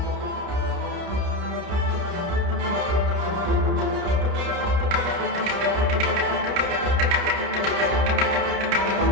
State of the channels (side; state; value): left; late; 30 ms